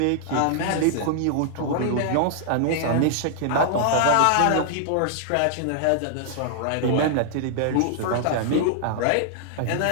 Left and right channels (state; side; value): different; both; correlation -0.01